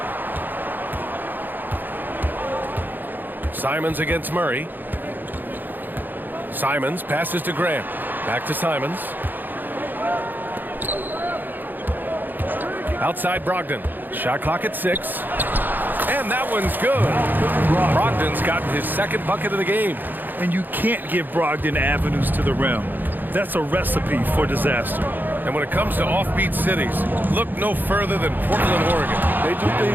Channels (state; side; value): late; left; 0.089 ms